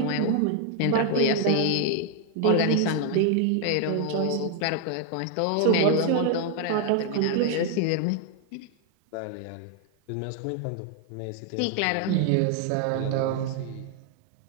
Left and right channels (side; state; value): both; different; correlation 0.00